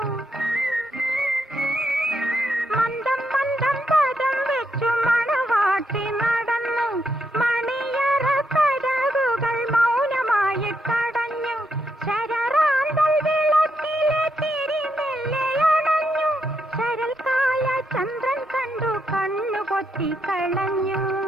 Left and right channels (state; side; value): normal; both; correlation 0.80